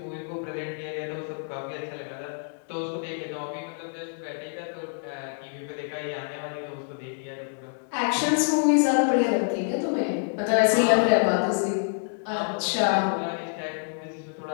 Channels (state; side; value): silent; right; 60 dB below the other